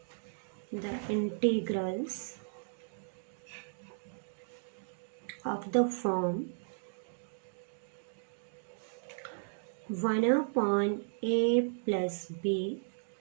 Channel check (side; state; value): left; silent; digital silence